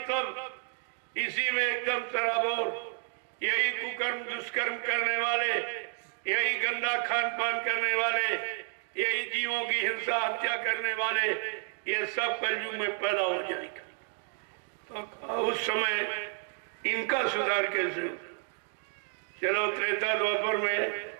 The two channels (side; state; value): left; silent; 57 dB below the other